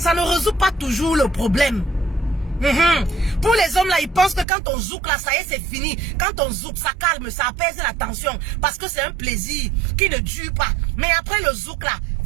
ne résout pas toujours le problème. Pour les hommes là, ils pensent que quand on zouk là, ça y est, c'est fini. Quand on zouk, ça calme, ça apaise la tension. Parce que c'est un plaisir qui ne dure pas. Mais après le zouk là,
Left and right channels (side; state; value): left; drops out; at 4.5 s